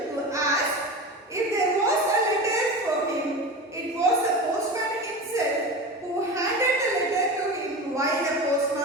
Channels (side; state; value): both; normal; correlation 0.28